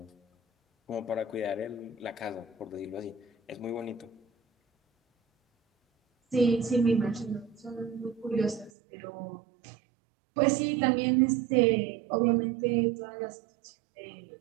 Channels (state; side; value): drops out; left; at 8.7 s